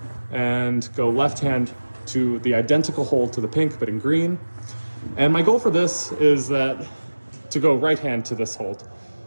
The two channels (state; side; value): inverted; both; correlation -1.00